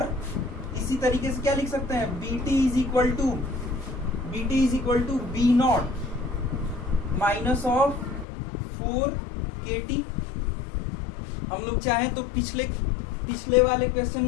इसी तरीके से क्या लिख सकते हैं, Bt is equal to B0 minus of 4kt। हम लोग चाहें तो पिछले वाले क्वेश्चन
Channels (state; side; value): drops out; right; at 8.2 s